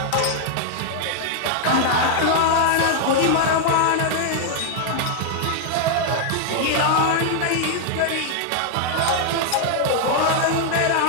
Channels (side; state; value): both; different; correlation 0.00